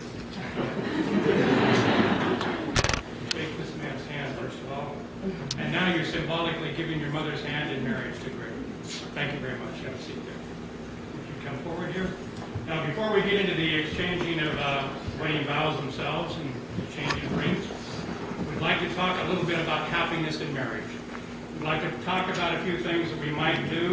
Shake this man's hand, first of all. And now you're symbolically giving your mother's hand in marriage to Greg. Thank you very much. Have a seat there. If you come forward here. Now, before we get into the exchanging of wedding vows themselves and exchanging rings, we'd like to talk a little bit about happiness in marriage. We'd like to talk about a few things that we might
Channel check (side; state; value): both; identical; correlation 1.00